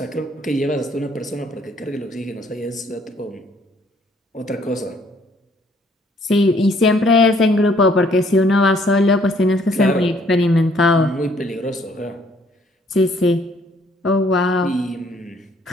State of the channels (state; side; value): normal; both; correlation 0.64